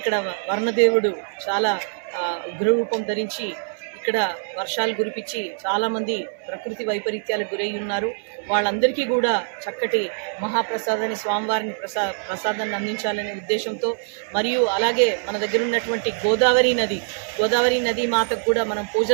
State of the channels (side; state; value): left; silent; 59 dB below the other